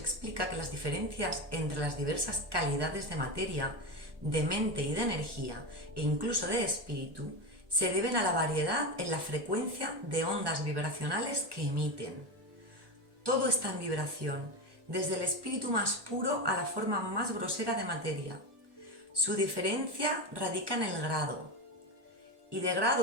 que las diferencias entre las diversas calidades de materia, de mente y de energía, e incluso de espíritu, se deben a la variedad en la frecuencia de ondas vibracionales que emiten. Todo está en vibración, desde el espíritu más puro a la forma más grosera de materia. Su diferencia radica en el grado. Y de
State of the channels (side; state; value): left; late; 1.1 ms